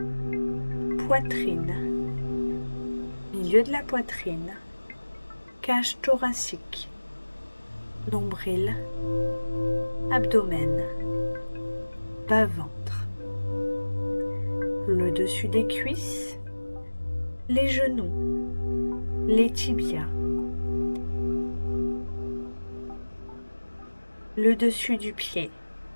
poitrine, milieu de la poitrine, cage thoracique, nombril, abdomen, bas-ventre, le dessus des cuisses, les genoux, les tibias, le dessus du pied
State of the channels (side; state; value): both; inverted; correlation -1.00